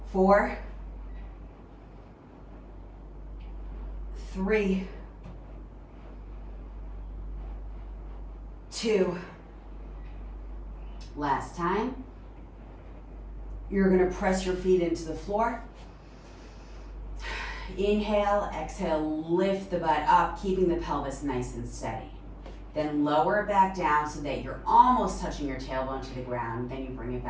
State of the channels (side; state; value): both; identical; correlation 1.00